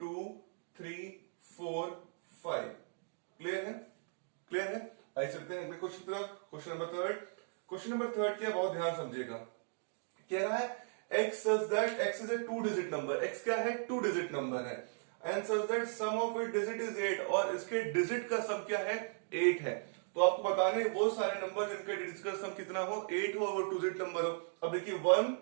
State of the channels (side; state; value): left; silent; 53 dB below the other